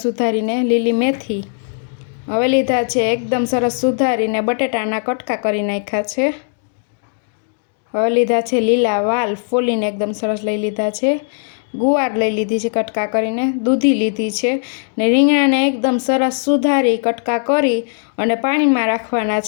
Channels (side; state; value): right; silent; 65 dB below the other